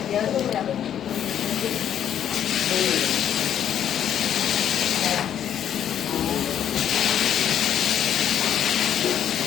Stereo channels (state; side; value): quieter; right; 9.8 dB